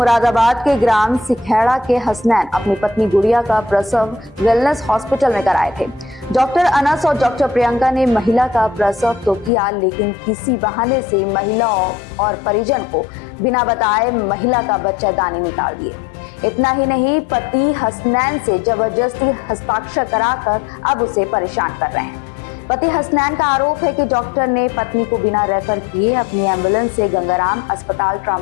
के ग्राम सिखेड़ा के हसनैन अपनी पत्नी गुड़िया का प्रसव वेलनेस हॉस्पिटल में कराए थे। डॉक्टर अनस और डॉक्टर प्रियंका ने महिला का प्रसव तो किया, लेकिन किसी बहाने से महिला और परिजन को बिना बताए महिला का बच्चादानी निकाल दिए। इतना ही नहीं, पति हसनैन से जबरदस्ती हस्ताक्षर कराकर अब उसे परेशान कर रहे हैं। पति हसनैन का आरोप है कि डॉक्टर ने पत्नी को बिना रेफर किए अपनी एम्बुलेंस से गंगाराम अस्पताल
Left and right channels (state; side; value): drops out; right; at 9.5 s